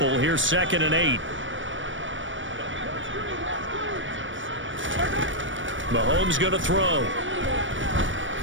Here's 2nd and 8. Mahomes going to throw.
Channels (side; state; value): left; late; 0.56 ms